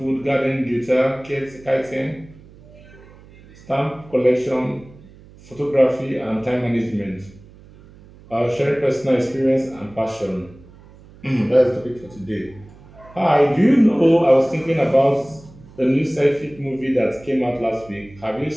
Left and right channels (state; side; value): noise; right; hum, 23 dB below the sound